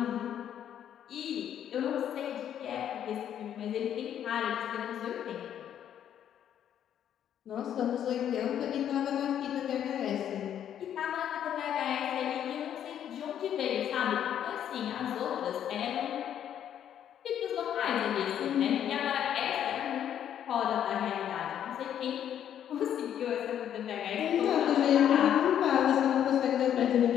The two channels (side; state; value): right; quieter; 9.9 dB